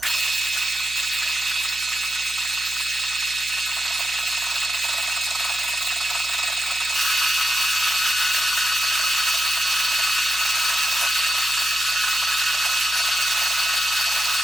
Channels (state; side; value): noise; right; hum, 22 dB below the sound